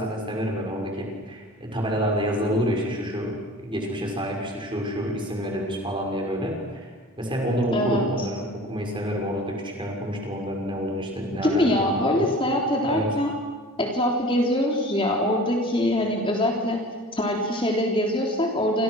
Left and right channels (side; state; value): both; normal; correlation 0.42